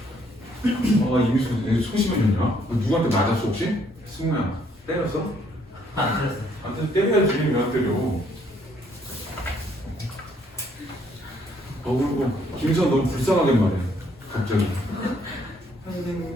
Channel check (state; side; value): normal; both; correlation 0.67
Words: 이미 소심해졌냐? 누구한테 맞았어 혹시? 승우야 때렸어? 안 그랬어요. 나한테 때려야지. 왜 안 때려? 그리고 김선 너무 불쌍하게 말해. 갑자기.